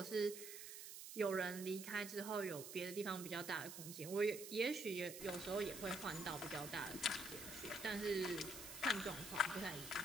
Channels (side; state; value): right; noise; hiss, 9 dB below the sound